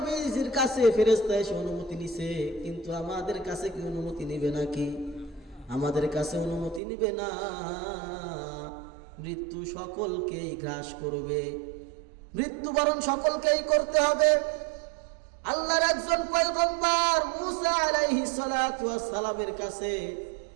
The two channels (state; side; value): drops out; left; at 6.8 s